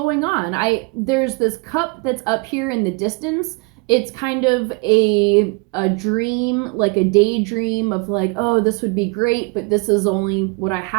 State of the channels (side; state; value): left; quieter; 30.3 dB